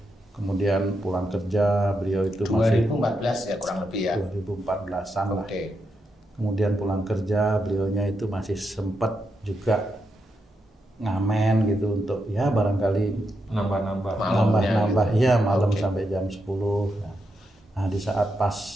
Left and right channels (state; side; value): normal; both; correlation 0.84